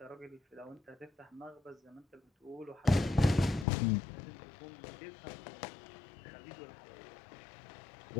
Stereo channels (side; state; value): right; drops out; at 3.7 s